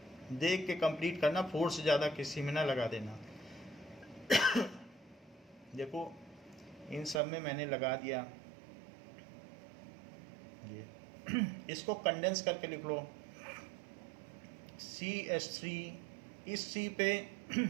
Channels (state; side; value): drops out; left; at 7.2 s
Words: देख के कंप्लीट करना, 4 से ज़्यादा किसी में ना लगा देना। देखो इन सब में मैंने लगा दिया, ये इसको कंडेंस करके लिख लो। CH3, इस C पे